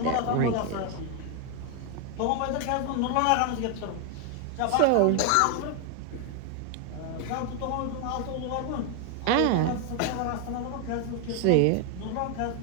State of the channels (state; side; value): different; both; correlation 0.01